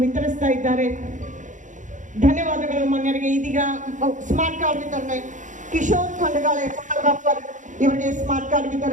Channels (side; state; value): left; late; 0.36 ms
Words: ವಿತರಿಸ್ತಾ ಇದ್ದಾರೆ. ಧನ್ಯವಾದಗಳು ಮಾನ್ಯರಿಗೆ. ಇದೀಗ ಸ್ಮಾರ್ಟ್ ಕಾರ್ಡ್ ವಿತರಣೆ. ಕಿಶೋರ್ ಖಂಡಗಾಳೆ ಫೋಟೋಗ್ರಾಫರ್, ಇವರಿಗೆ ಸ್ಮಾರ್ಟ್ ಕಾರ್ಡ್